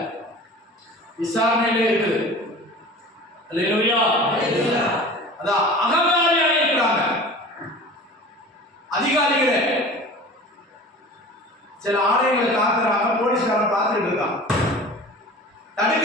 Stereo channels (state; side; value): normal; both; correlation 0.39